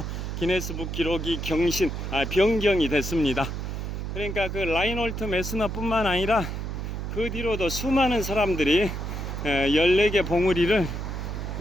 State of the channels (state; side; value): noise; right; hum, 5 dB below the sound